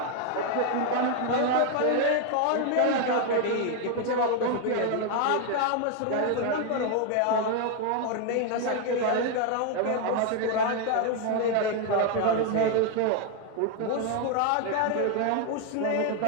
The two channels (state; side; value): different; both; correlation 0.00